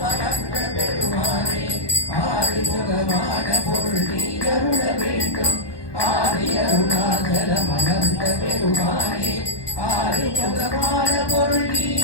அமர்ந்த பெருமானே ஆறுமுகமான பொருள் நீ அருள வேண்டும் ஆதி அருணாச்சலம் அமர்ந்த பெருமானே ஆறுமுகமான பொருள் நீ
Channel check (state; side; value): late; right; 1.2 ms